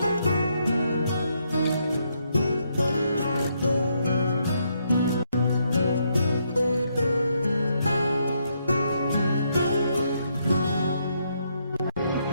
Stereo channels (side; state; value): both; inverted; correlation -0.76